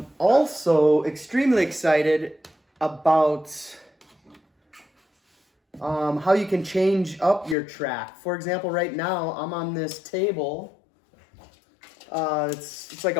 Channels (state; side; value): drops out; right; at 7.6 s